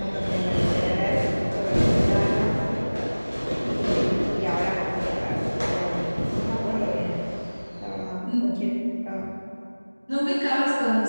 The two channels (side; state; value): both; inverted; correlation -1.00